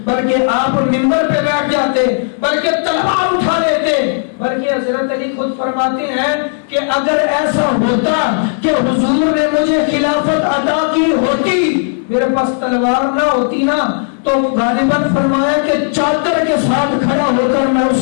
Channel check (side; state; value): right; silent; digital silence